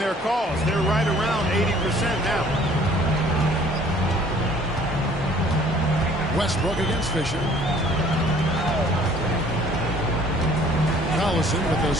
cause. They're right around 80% now. Westbrook against Fisher. Collison with a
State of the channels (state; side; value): normal; both; correlation 0.55